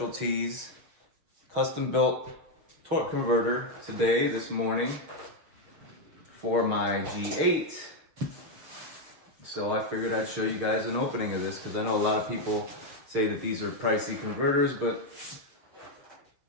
custom built torque converter this morning for my G8. So I figured I'd show you guys an opening of this because I know a lot of people say that these are pricey converters, but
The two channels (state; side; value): late; left; 7.2 ms